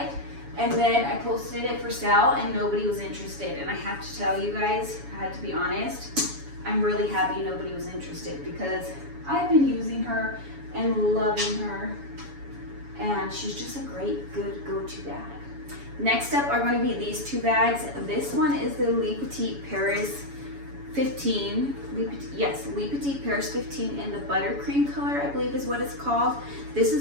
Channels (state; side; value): late; left; 7.1 ms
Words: And then I posted it for sale and nobody was interested. And I have to tell you guys, I had to be honest, I'm really happy nobody was interested because I've been using her and loving her. And she's just a great, good go-to bag. Next up are going to be these two bags. This one is the Le Petit Paris 15. Le Petit Paris 15 in the buttercream color, I believe is what it's called. This